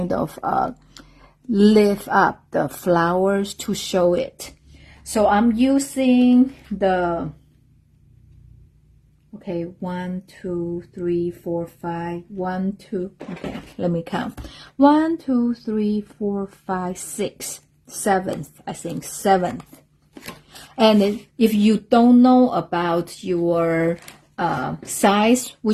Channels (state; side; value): identical; both; correlation 1.00